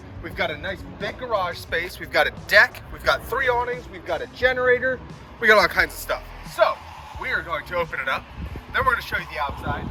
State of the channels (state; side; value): identical; both; correlation 1.00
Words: We've got a nice big garage space. We've got a deck. We've got 3 awnings. We've got a generator. We got all kinds of stuff. So we are going to open it up. Then we're going to show you the outside.